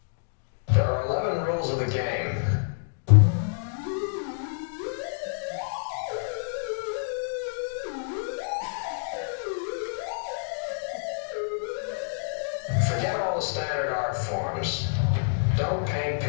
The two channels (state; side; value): silent; right; digital silence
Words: There are 11 rules of the game. Forget all the standard art forms. Don't paint